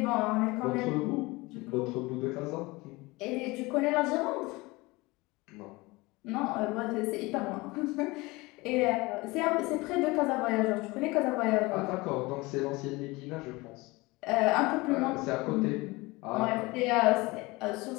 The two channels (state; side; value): quieter; right; 22.8 dB